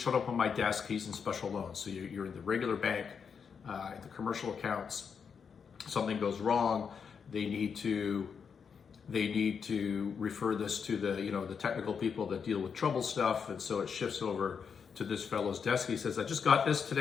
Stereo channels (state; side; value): quieter; right; 6.5 dB